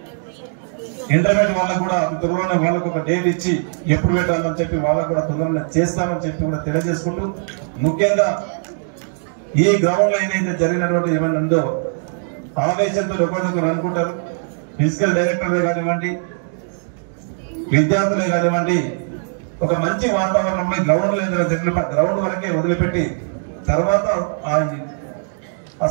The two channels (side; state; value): left; silent; digital silence